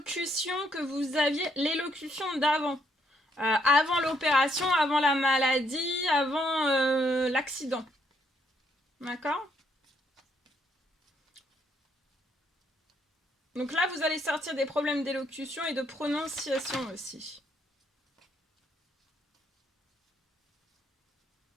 que vous aviez, l'élocution d'avant. Avant l'opération, avant la maladie, avant l'accident. D'accord ? Donc là, vous allez sortir des problèmes d'élocution et de prononciation aussi.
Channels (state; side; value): normal; both; correlation 0.72